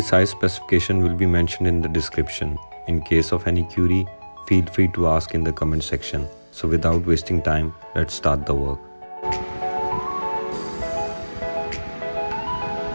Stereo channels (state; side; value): inverted; both; correlation -1.00